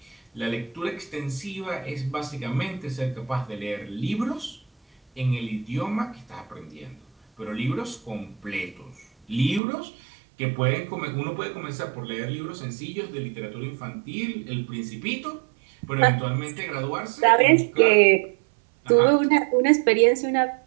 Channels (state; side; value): drops out; left; at 9.6 s